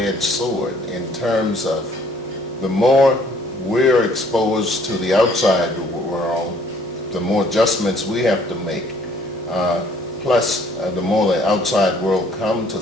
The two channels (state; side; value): normal; both; correlation 0.60